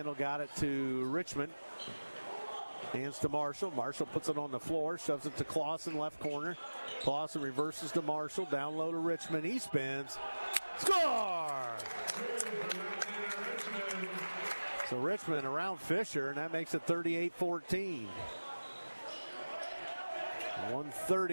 got it to Richmond. Hands to Marshall. Marshall puts it on the floor, shoves it to Clausen, left corner. Clausen reverses to Marshall, down low to Richmond. He spins. Score! So Richmond around Fisher, and that makes it 38-14.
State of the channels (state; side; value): inverted; both; correlation -1.00